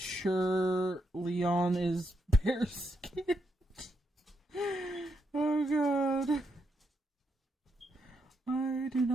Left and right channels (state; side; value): normal; both; correlation 0.81